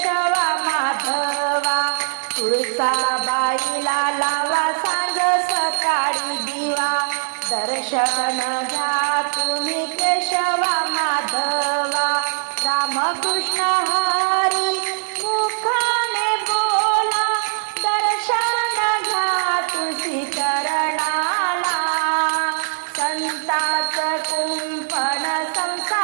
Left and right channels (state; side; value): silent; left; digital silence